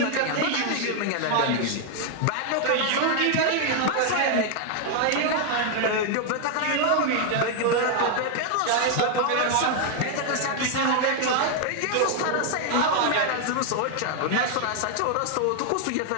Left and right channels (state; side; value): different; both; correlation 0.00